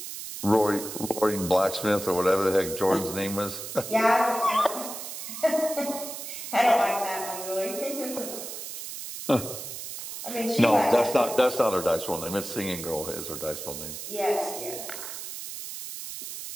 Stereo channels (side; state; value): right; noise; hiss, 8 dB below the sound